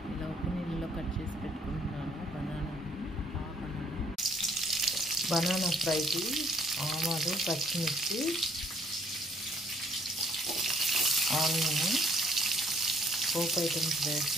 ఇలా ఉప్పు నీళ్ళలో కట్ చేసి పెట్టుకుంటున్నాను బనానా ఫ్రైకి ఆవాలు పచ్చిమిర్చి ఆనియన్ పోపు ఐటమ్స్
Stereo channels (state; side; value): normal; both; correlation 0.62